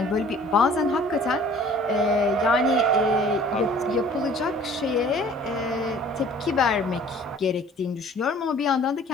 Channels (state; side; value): normal; both; correlation 0.51